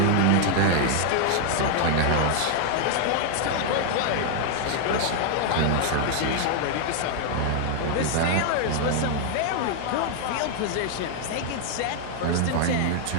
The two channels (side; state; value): both; different; correlation 0.00